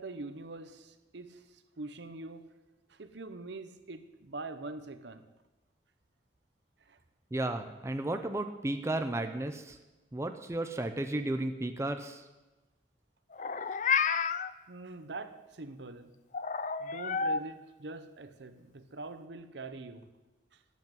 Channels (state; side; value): normal; both; correlation 0.21